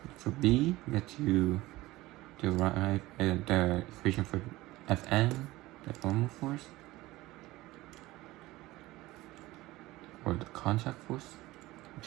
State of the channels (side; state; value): left; quieter; 18.7 dB